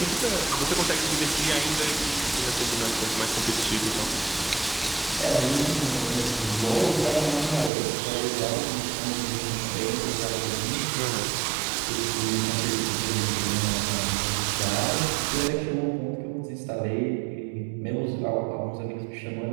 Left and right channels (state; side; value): drops out; left; at 7.7 s